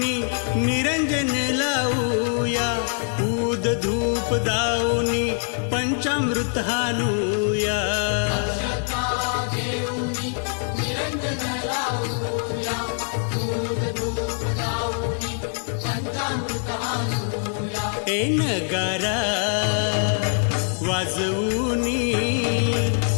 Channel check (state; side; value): silent; right; 57 dB below the other